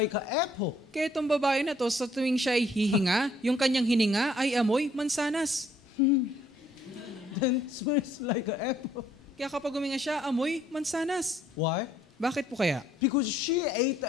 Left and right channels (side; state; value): both; normal; correlation 0.64